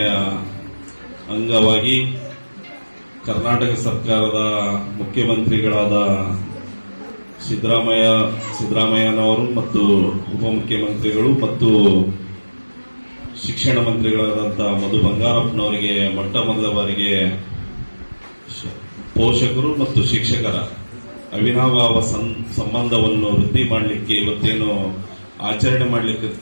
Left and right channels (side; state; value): both; inverted; correlation -1.00